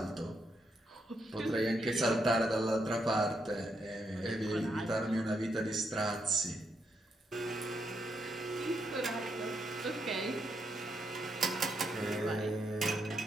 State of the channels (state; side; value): normal; both; correlation 0.79